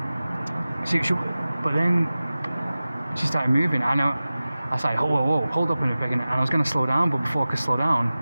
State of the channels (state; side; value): inverted; both; correlation -0.97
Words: but then she started moving. I was like, whoa, hold up in a second, and I was going to slow down, but before I could slow down,